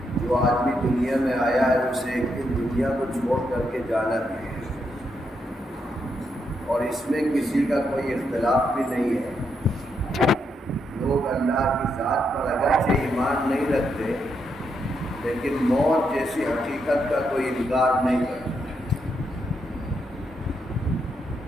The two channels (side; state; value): both; normal; correlation 0.80